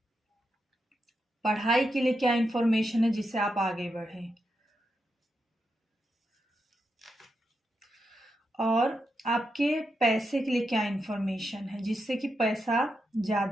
पढ़ाई के लिए क्या इंफॉर्मेशन है जिससे आप आगे बढ़ें। और आपके पैसे के लिए क्या इंफॉर्मेशन है जिससे कि पैसा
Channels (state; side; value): normal; both; correlation 0.85